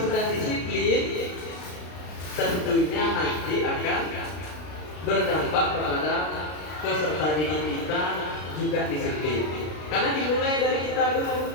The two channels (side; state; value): right; late; 33 ms